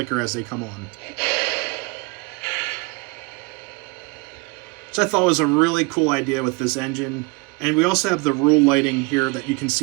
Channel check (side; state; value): left; quieter; 27.2 dB